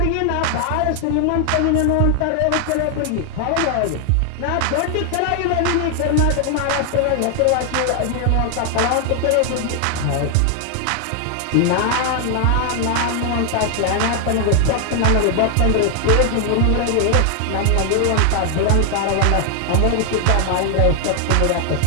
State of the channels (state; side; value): different; both; correlation 0.00